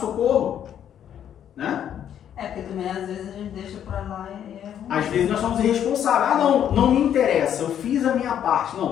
né? Porque também às vezes a gente deixa pra lá e é ruim. Às vezes nós somos irresponsáveis. Não me interessa, eu fiz a minha parte. Não,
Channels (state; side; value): quieter; right; 9.7 dB